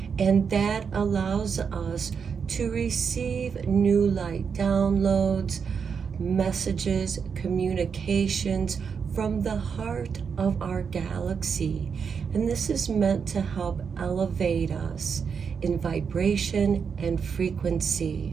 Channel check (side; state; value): left; quieter; 6.3 dB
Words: and that allows us to receive new light downloads, messages, communications from the heart of our galaxy. And this is meant to help elevate us in vibration and frequency.